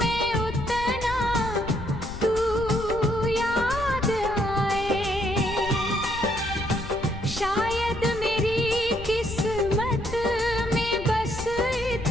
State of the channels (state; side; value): noise; left; rumble, 11 dB below the sound